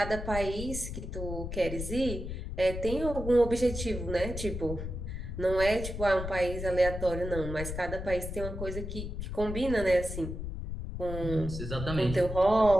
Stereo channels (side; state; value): left; noise; rumble, 6 dB below the sound